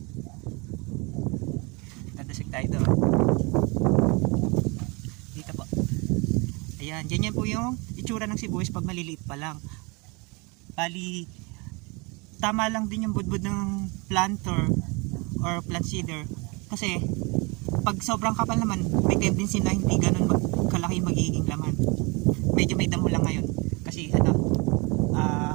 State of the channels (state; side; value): quieter; left; 28.6 dB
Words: Dadasig tayo doon. Dito po. Ayan. Ganyan po yung itsura ng sibuyas pag maliliit pa lang. Bali, tama lang din yung budbud ng planter or plant seeder. Kasi, pag sobrang kapal naman, may tendency na hindi ganun kalaki magiging laman. Medyo may damo lang ngayon. Kasi,